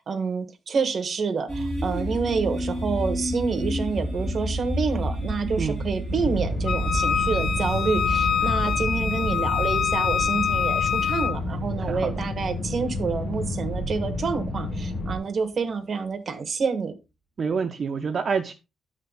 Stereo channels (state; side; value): normal; both; correlation 0.76